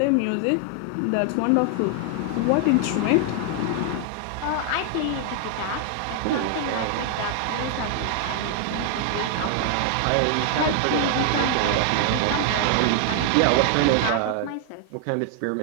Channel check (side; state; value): both; different; correlation 0.00